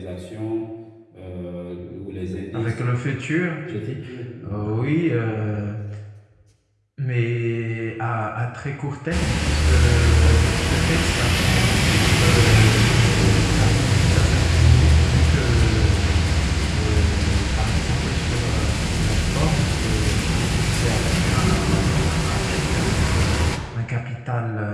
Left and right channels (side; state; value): both; identical; correlation 1.00